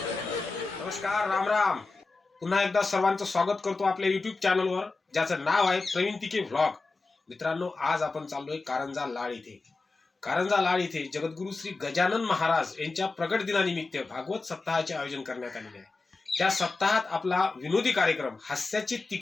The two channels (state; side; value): quieter; right; 3.7 dB